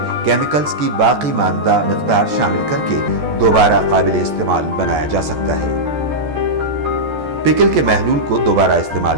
کیمیکلز کی باقی ماندہ مقدار شامل کر کے دوبارہ قابل استعمال بنایا جا سکتا ہے۔ پکل کے محلول کو دوبارہ استعمال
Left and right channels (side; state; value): left; late; 14 ms